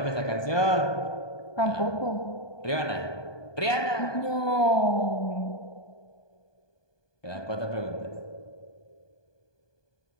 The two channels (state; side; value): late; right; 1.2 ms